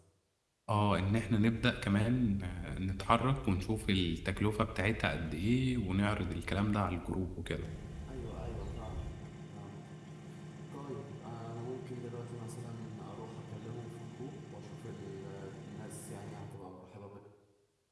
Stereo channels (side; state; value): both; identical; correlation 1.00